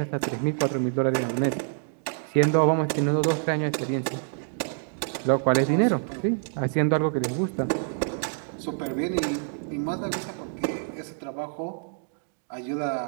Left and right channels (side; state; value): left; silent; digital silence